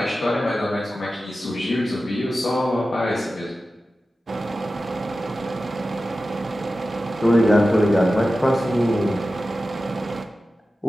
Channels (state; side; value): normal; both; correlation 0.94